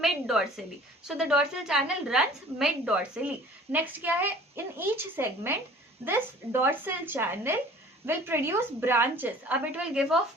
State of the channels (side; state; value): both; normal; correlation 0.48